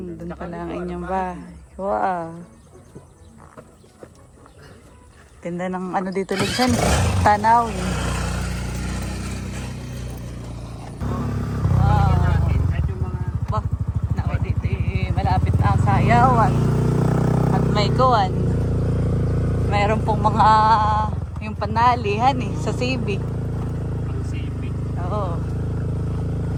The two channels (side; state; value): both; identical; correlation 1.00